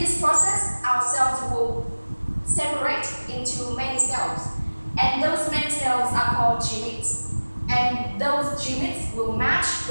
this process, our cells will separate into many cells. And those many cells are called gametes. And those gametes will match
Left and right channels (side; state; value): both; inverted; correlation -1.00